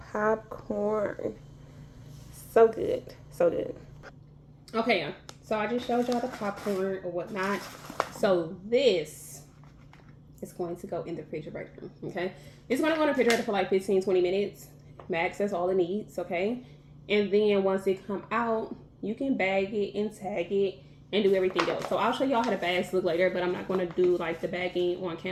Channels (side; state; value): both; identical; correlation 1.00